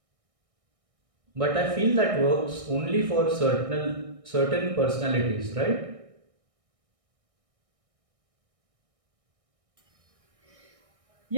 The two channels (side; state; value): left; late; 1.6 ms